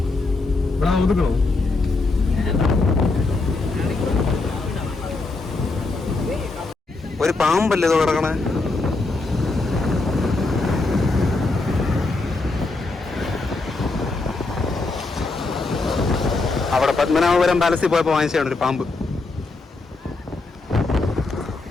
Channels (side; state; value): right; quieter; 3.5 dB